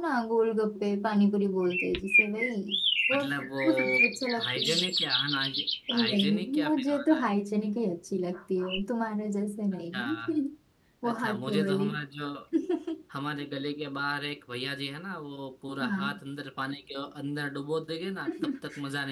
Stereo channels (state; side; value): identical; both; correlation 1.00